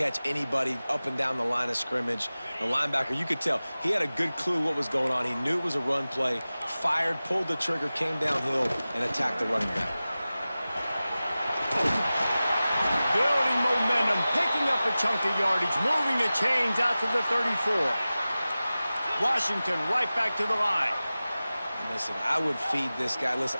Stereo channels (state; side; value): inverted; both; correlation -0.96